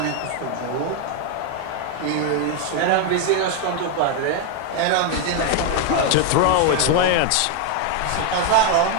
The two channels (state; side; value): different; both; correlation 0.01